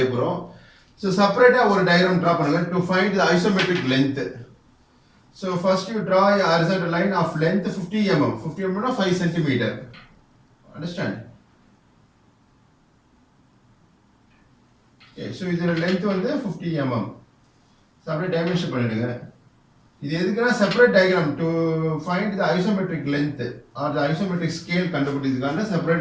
போறோம். So separate ஒரு diagram draw பண்ணுங்க to find the isometric length. So first you draw a horizontal line of length 50 mm. 50 mm na 5 cm. Understand? Okay, so இதோட length வந்து 50 mm. So அப்படியே dimension பண்ணிடுங்க. இது எதுக்குன்னா separate diagram to find the isometric length or the isometric scale கண்டுபிடிக்கிறதுக்கான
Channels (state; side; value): identical; both; correlation 1.00